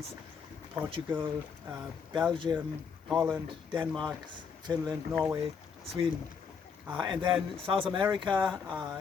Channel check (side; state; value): right; quieter; 6.2 dB